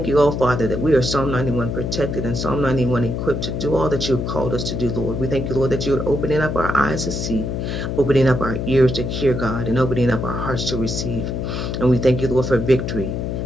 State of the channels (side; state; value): left; noise; hum, 2 dB below the sound